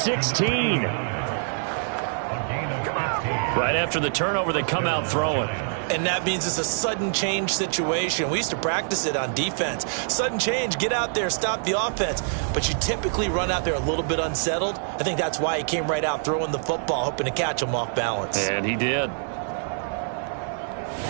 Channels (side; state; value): left; silent; digital silence